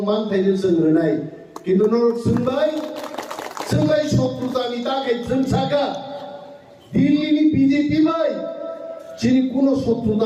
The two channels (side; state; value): both; identical; correlation 1.00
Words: মান থাইनो जोंनाय কিন্তু নরক जोंबाय শত্রুতানি তাকে जोंसागा দিল্লিনি বিজেপি ভাই চিনি কোন